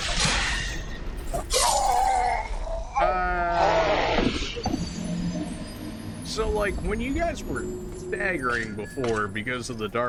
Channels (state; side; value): identical; both; correlation 1.00